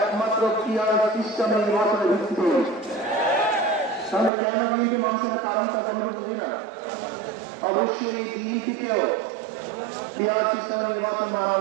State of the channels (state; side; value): drops out; left; at 4.3 s